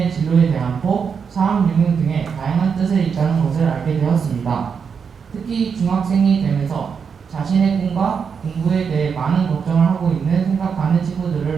진로에 대한 폭, 사업 유무 등의 다양한 뜻을 있다는 것을 알게 되었습니다. 특히 중학생이 되면서 자신의 꿈과 공부에 대해 많은 걱정을 하고 있는 생각하는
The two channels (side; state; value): left; quieter; 6.3 dB